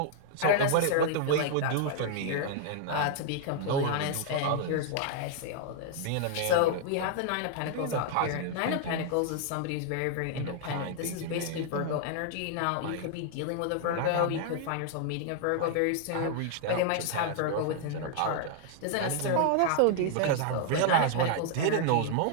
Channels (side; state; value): both; different; correlation -0.01